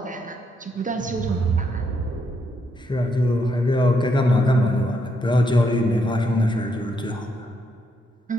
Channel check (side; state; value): both; normal; correlation 0.77